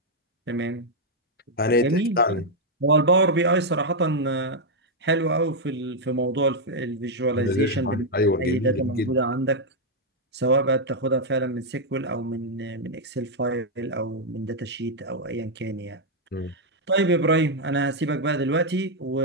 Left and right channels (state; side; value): normal; both; correlation -0.02